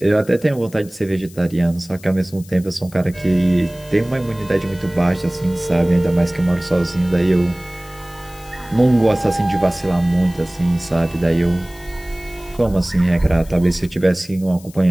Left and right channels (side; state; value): left; noise; hiss, 22 dB below the sound